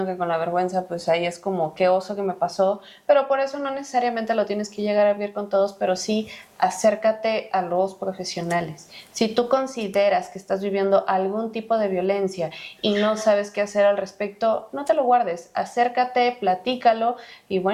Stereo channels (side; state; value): both; identical; correlation 1.00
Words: que con la vergüenza, pues ahí es como, qué oso que me pasó, pero por eso no necesariamente lo tienes que llegar a vivir con todos, pero sí acércate a los profesionales. Si tú consideras que estás viviendo algún tipo de violencia y no sabes qué hacer al respecto, no te lo guardes, acércate, platícalo y